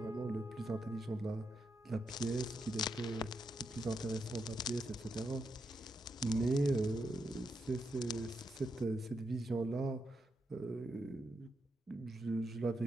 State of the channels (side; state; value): both; normal; correlation 0.83